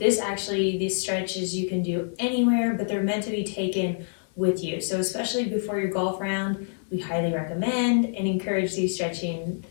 stretches you can do anywhere, but they're meant to be taken with you. So especially before your golf round, we highly recommend and encourage these stretches.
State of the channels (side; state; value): right; silent; digital silence